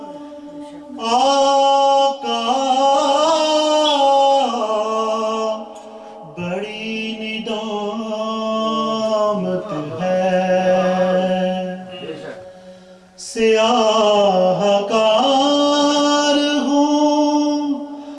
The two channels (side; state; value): both; identical; correlation 1.00